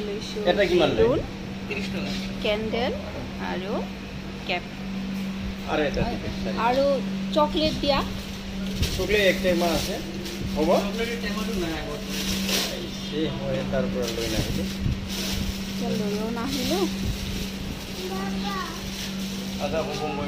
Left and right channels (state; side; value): identical; both; correlation 1.00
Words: লৈছোঁ বেলুন, কেণ্ডেল আৰু কেপ আৰু চকলেট দিয়া। চকলেট এক টেমা আছে, হ'ব এই মই তাৰ পৰা লৈ নাহিলোঁ, লৈও নাহিলোঁ। আদা হ'ব